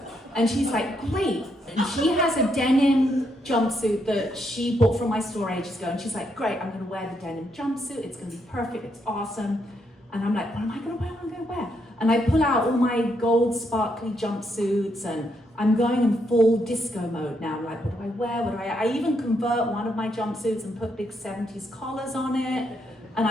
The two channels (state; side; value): normal; both; correlation 0.77